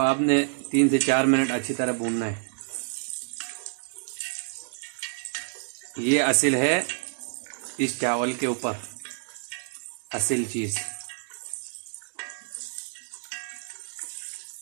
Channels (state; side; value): silent; left; 59 dB below the other